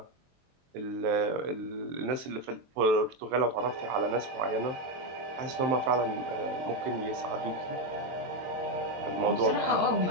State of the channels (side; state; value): left; late; 23 ms